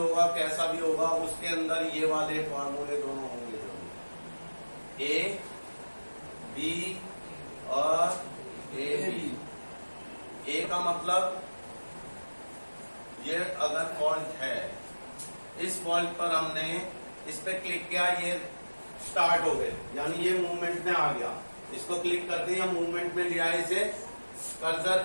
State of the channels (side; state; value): both; inverted; correlation -1.00